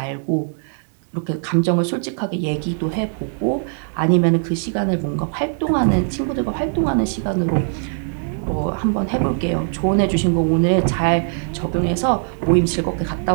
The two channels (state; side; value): silent; left; 64 dB below the other